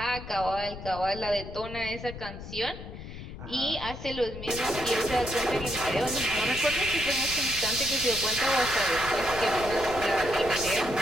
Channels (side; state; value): left; noise; rumble, 11 dB below the sound